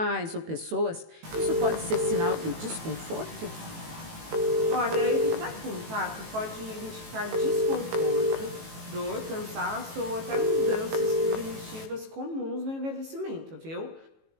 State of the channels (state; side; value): late; left; 18 ms